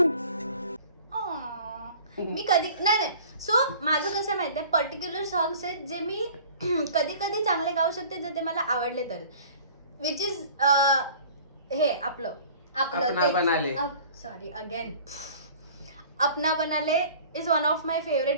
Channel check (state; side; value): inverted; both; correlation -0.46